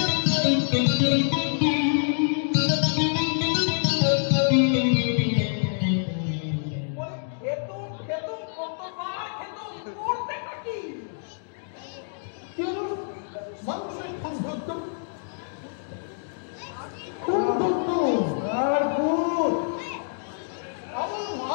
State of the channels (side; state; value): right; silent; digital silence